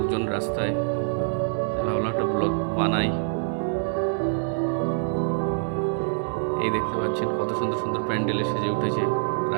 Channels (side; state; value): left; silent; digital silence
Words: রাস্তায়। ভাবলাম একটা ব্লগ বানাই। এই দেখতে পাচ্ছেন কত সুন্দর সুন্দর প্যান্ডেলে সেজে উঠেছে